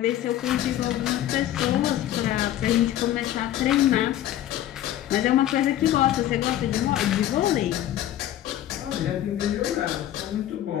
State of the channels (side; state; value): right; quieter; 12.6 dB